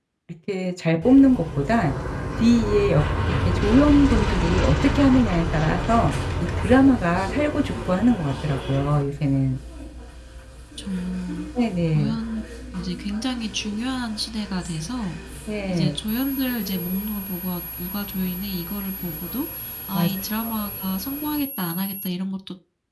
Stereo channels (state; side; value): identical; both; correlation 1.00